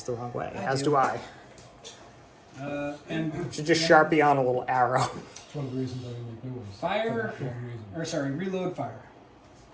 the wrong way, I as do. do I. And You should just Sharpie on a little arrow. It's one of the reasons I didn't make new ones. Fire, For that reason. or sorry, reload fire.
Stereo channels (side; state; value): both; identical; correlation 1.00